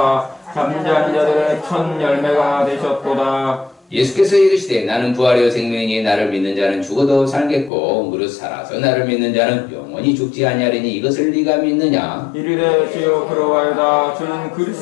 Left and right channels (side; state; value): right; drops out; at 7.7 s